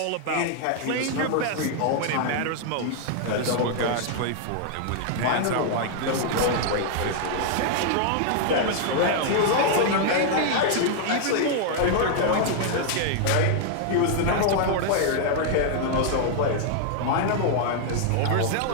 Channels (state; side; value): different; both; correlation 0.00